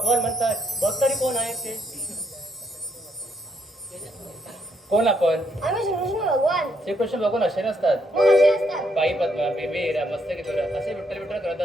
म्हणतात. बघ तरी कोण आहेत ते. कोण आपण? आम्ही श्रीकृष्ण भगवान. श्रीकृष्ण भगवान असे नसतात. मग असे असतात. बाई पद्मा, बेबी हिरा, मस्तकी दोरा असे विठ्ठल विठ्ठल करत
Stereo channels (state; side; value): normal; both; correlation 0.73